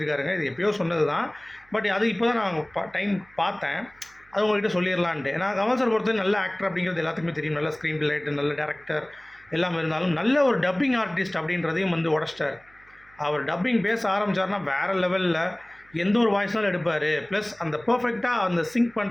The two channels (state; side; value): noise; right; hum, 29 dB below the sound